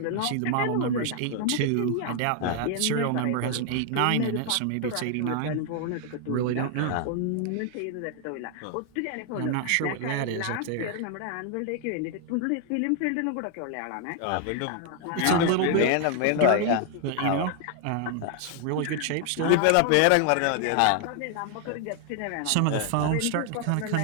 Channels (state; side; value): different; both; correlation 0.00